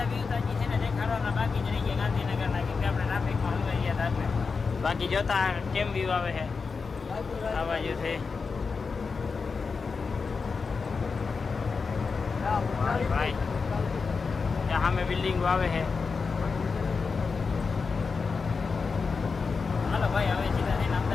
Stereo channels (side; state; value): right; quieter; 4.9 dB